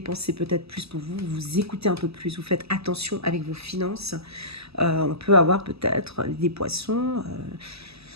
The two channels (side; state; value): left; late; 0.78 ms